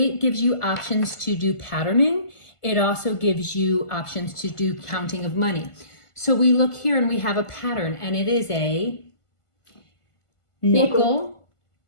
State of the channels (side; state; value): right; late; 1.5 ms